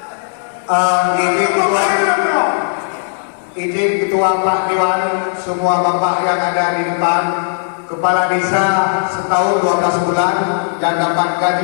Izin Ketua Pak Dewan, semua bapak yang ada di depan, kepala desa setahun 12 bulan yang dapat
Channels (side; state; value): right; silent; digital silence